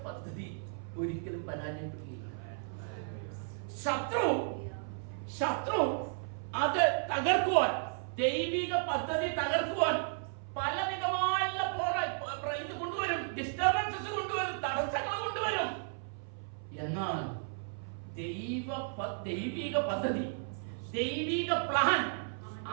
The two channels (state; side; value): silent; left; 55 dB below the other